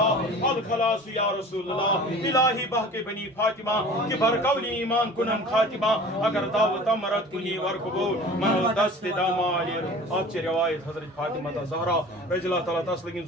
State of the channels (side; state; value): both; normal; correlation 0.42